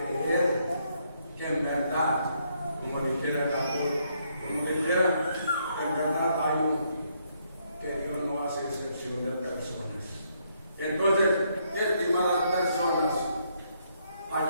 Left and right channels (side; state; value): both; inverted; correlation -0.73